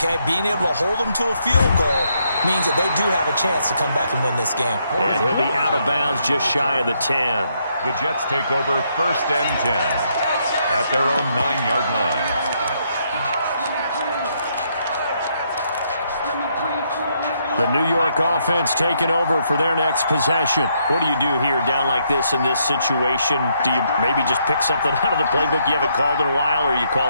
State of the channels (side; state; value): both; inverted; correlation -0.74